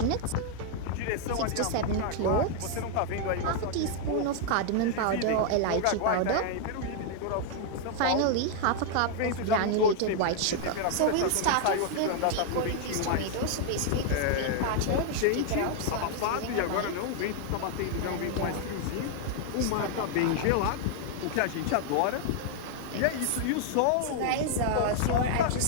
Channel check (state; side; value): different; both; correlation 0.00